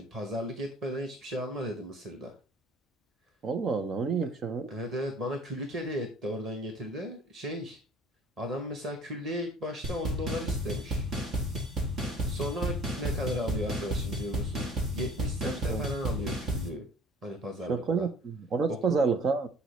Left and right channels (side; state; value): both; normal; correlation 0.51